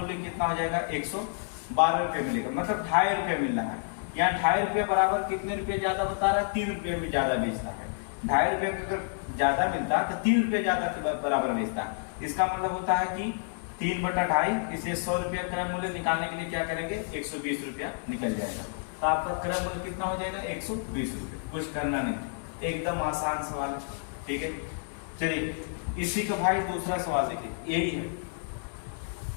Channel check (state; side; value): silent; right; digital silence